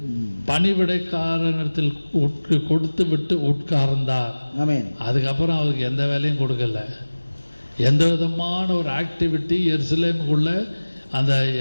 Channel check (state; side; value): inverted; both; correlation -1.00